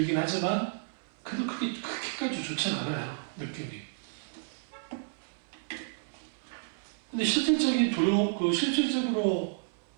하지만 그래도 그렇게까지 그렇게까지 좋진 않아요, 느낌이. 근데 실질적인 두려움, 실질적으로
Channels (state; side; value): silent; left; 57 dB below the other